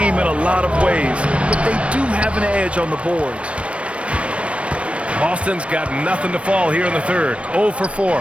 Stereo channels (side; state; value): left; late; 0.061 ms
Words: in a lot of ways, but they do have an edge on the boards. Boston's got nothing to fall here in the third. 0 for 4.